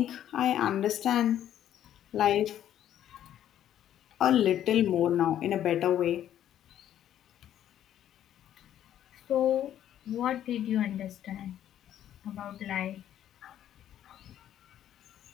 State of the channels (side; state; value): right; quieter; 11.1 dB